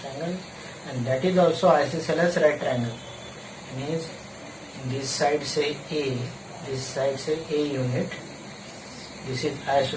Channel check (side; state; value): both; identical; correlation 1.00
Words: and that is also isosceles right triangle. Means this side say A, this side say A unit. This is